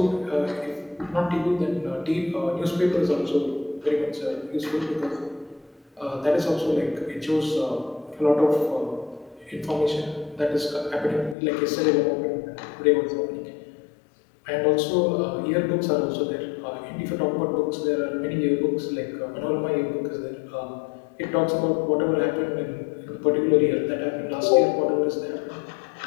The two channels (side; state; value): right; drops out; at 11.4 s